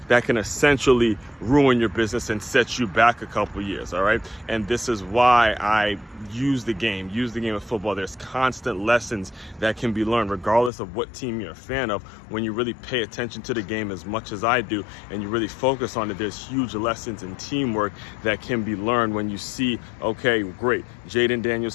can essentially ruin your business and set you back a couple years, all right? And this is why I use the game of football. There's constant lessons that can be learned regardless of what team you're a fan of. When you really pay attention to the game as much as I do and you really focus on it, there's huge lessons in teamwork that can be learned when you see, okay, great, Jaden Daniels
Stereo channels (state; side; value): drops out; right; at 10.7 s